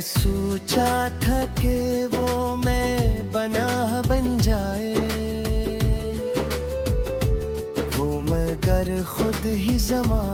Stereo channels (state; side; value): identical; both; correlation 1.00